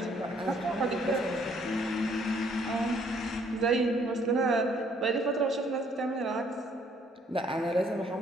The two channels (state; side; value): normal; both; correlation 0.64